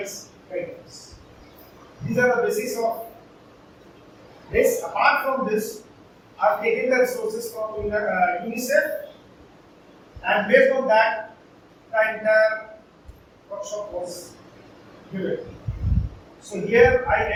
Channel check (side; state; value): both; identical; correlation 1.00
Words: guidelines. These are the basis of this. Apart from this, I have taken the resources from UNICEF, and based on that, the entire workshop was given. So here I